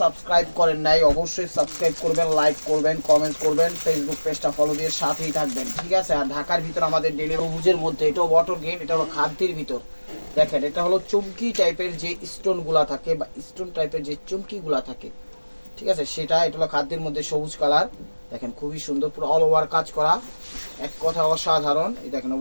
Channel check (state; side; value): inverted; both; correlation -1.00